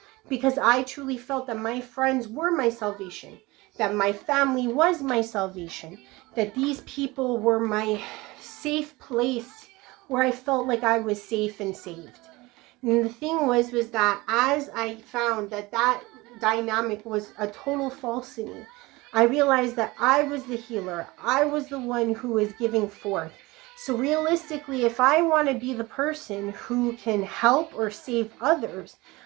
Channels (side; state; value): left; quieter; 21.8 dB